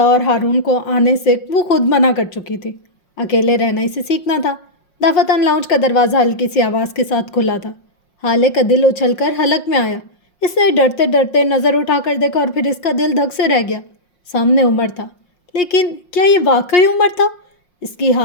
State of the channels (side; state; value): right; late; 5.6 ms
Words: اور ہارون کو آنے سے وہ خود منع کر چکی تھی۔ اکیلے رہنا اسے سیکھنا تھا۔ دفعتاً لاؤنج کا دروازہ ہلکی سی آواز کے ساتھ کھلا تھا۔ حالے کا دل اچھل کر حلق میں آیا۔ اس نے ڈرتے ڈرتے نظر اٹھا کر دیکھا، اور پھر اس کا دل دھک سے رہ گیا۔ سامنے عمر تھا، لیکن کیا یہ واقعی عمر تھا؟ اس کی